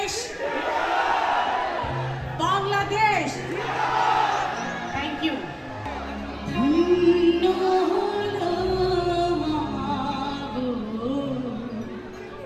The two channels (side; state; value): both; identical; correlation 1.00